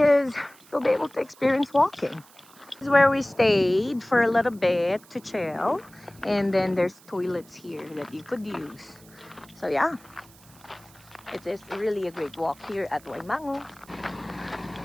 you'll be able to experience walking. This is where we stayed for a little bit to chill. And then there's toilets here that you could use. So yeah, it is really a great walk here at Waimangu.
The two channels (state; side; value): noise; right; hiss, 25 dB below the sound